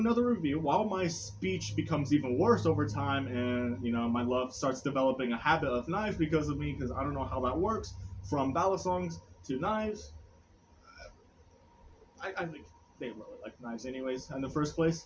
review. While my speech becomes even worse over time and, my love starts developing a habit of knives because of me, because I don't know how that works, from ballad songs to knives. I think they really like knives anyways, in the first place.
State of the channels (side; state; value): both; identical; correlation 1.00